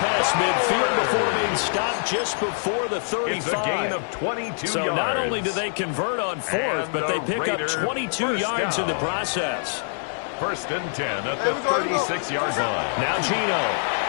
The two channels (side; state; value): right; silent; digital silence